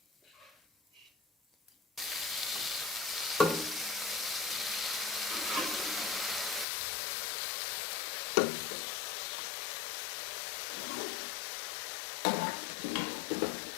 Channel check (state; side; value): drops out; right; at 6.7 s